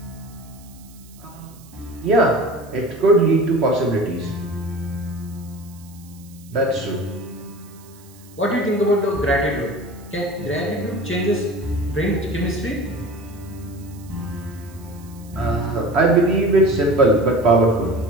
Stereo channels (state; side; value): noise; right; hiss, 25 dB below the sound